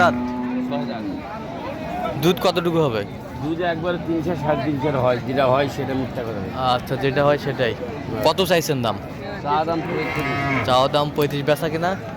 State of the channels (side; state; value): both; identical; correlation 1.00